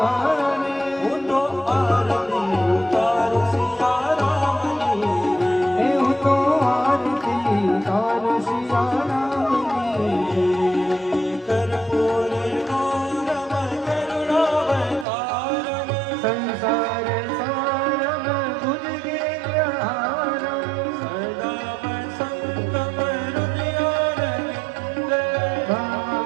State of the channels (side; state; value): left; drops out; at 15.1 s